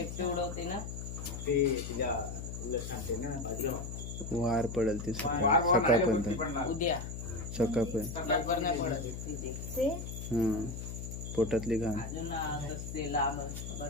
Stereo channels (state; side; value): noise; left; hum, 7 dB below the sound